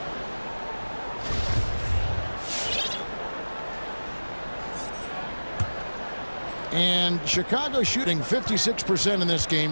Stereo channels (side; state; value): both; inverted; correlation -1.00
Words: And Chicago shooting 56% in this